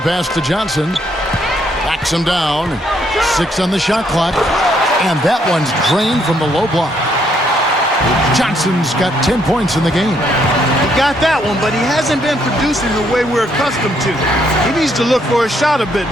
to Johnson. Backs him down. 6 on the shot clock. And that one's drained from the low block. Johnson's got 10 points in the game. He got that one, but he hasn't been producing the way we're accustomed to. He needs to look for a shot a bit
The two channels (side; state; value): both; normal; correlation 0.71